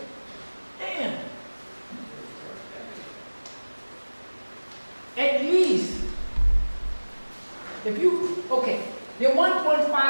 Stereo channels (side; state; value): both; inverted; correlation -1.00